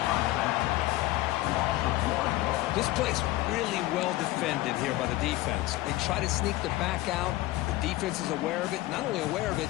This play's really well defended here by the defense. They try to sneak the back out. The defense is aware of it. Not only aware of it,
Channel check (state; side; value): quieter; right; 17.3 dB